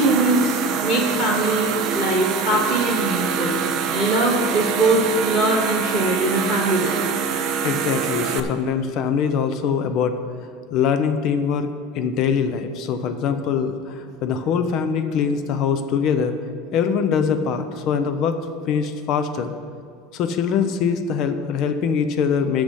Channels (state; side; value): normal; both; correlation 0.33